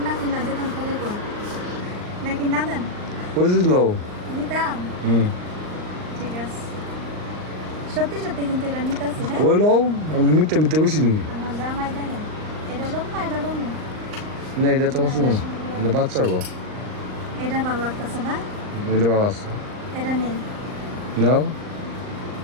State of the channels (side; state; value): left; late; 39 ms